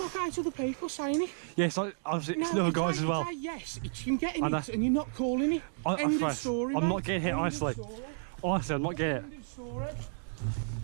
8 other people saying it. Yeah, it's like, obviously, it's other guys as well. Yes, it's him getting it and you're not calling it. End of story, I'm mate. not getting hit, End of honestly. story. Honestly, I'm not getting it. End of story.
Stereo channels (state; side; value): silent; left; digital silence